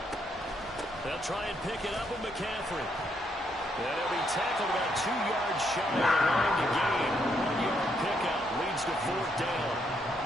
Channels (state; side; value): normal; both; correlation 0.75